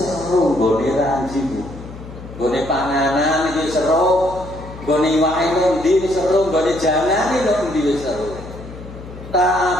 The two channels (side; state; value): left; noise; hum, 14 dB below the sound